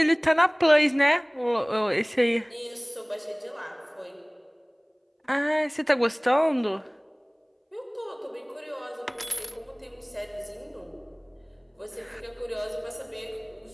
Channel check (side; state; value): both; identical; correlation 1.00